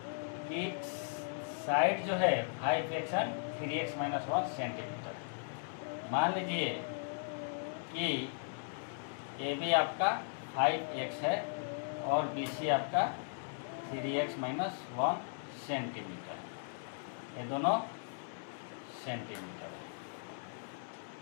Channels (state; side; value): silent; right; 53 dB below the other